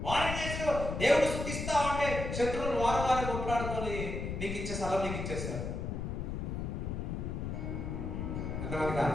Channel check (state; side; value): noise; left; rumble, 4 dB below the sound